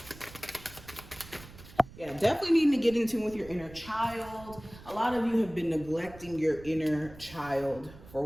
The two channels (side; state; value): right; noise; rumble, 18 dB below the sound